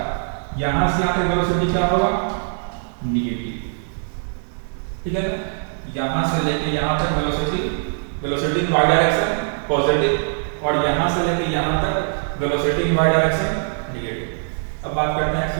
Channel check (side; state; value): left; silent; digital silence